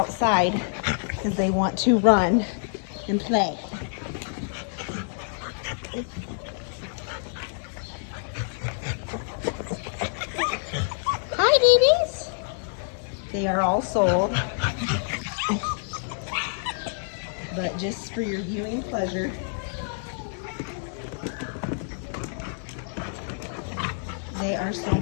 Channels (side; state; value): right; silent; digital silence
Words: because they want to run and play. Hi, babies. They are all sold, but just for your viewing pleasure. They are so